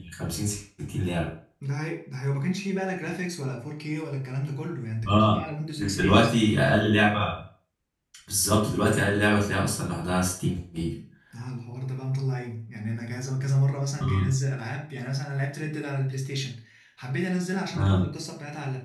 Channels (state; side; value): identical; both; correlation 1.00